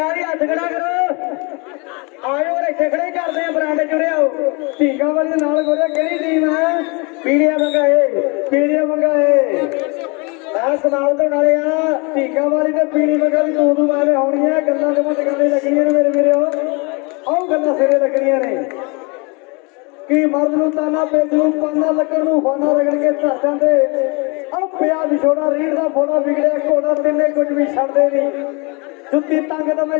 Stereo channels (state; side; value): quieter; right; 30.2 dB